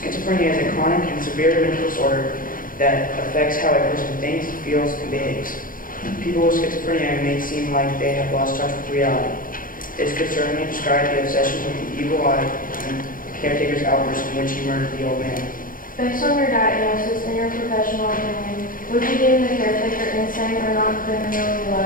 is a chronic and severe mental disorder that affects how a person thinks, feels, and behaves. People with schizophrenia may seem like they have lost touch with reality. This could certainly describe the obsession with the evil eye and the caretaker's outburst in which he murdered the old man. Based on your diagnosis and your professional opinion, would you deem the caretaker insane or not criminally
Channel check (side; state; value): right; late; 0.40 ms